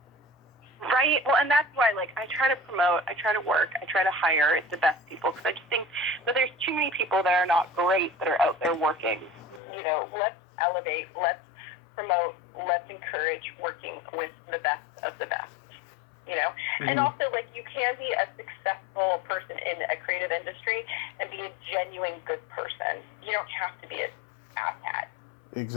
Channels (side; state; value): right; drops out; at 9.6 s